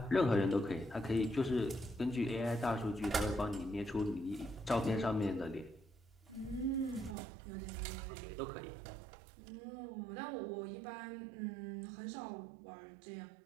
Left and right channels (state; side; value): drops out; left; at 7.2 s